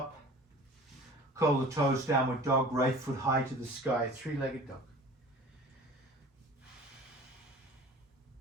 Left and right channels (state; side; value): normal; both; correlation 0.43